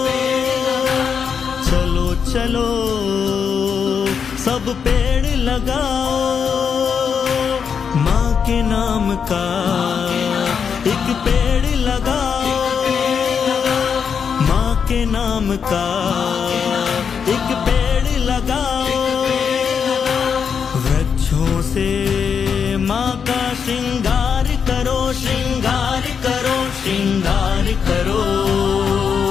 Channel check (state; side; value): quieter; right; 6.7 dB